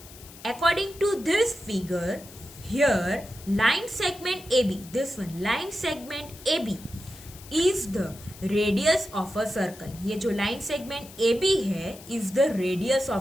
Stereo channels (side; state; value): left; noise; hiss, 19 dB below the sound